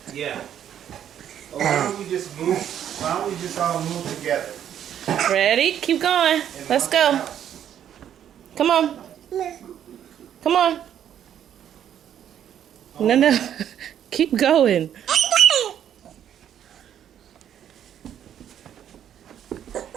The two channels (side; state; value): left; quieter; 9.9 dB